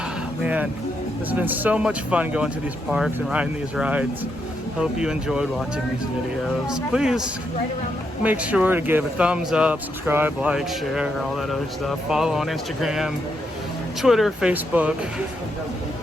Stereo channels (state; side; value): normal; both; correlation 0.80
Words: Man, this has been so much fun going to these parks and riding these rides. Hope you enjoyed watching these videos. Please make sure to give a thumbs up, subscribe, like, share, all that other stuff. Follow on Instagram, Twitter, Facebook.